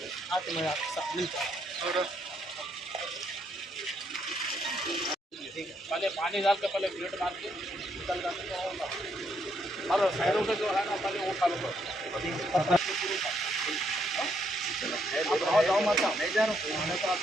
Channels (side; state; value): both; normal; correlation 0.74